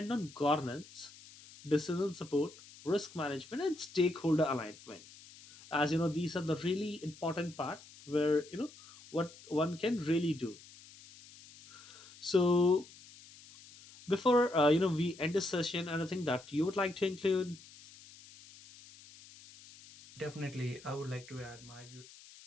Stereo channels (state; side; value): noise; left; hiss, 20 dB below the sound